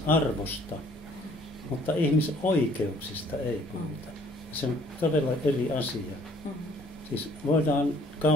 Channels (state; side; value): normal; both; correlation 0.59